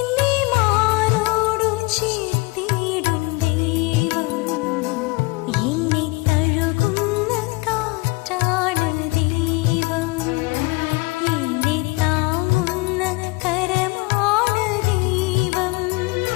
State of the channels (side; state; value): right; quieter; 24.9 dB